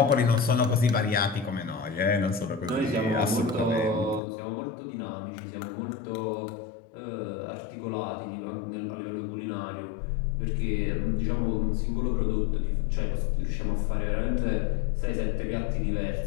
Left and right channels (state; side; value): drops out; right; at 4.2 s